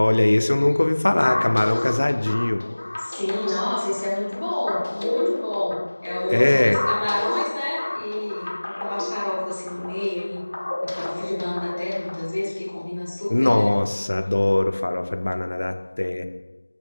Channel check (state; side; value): inverted; both; correlation -1.00